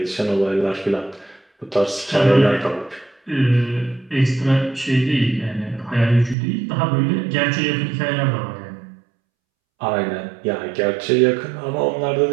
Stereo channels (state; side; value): drops out; left; at 6.4 s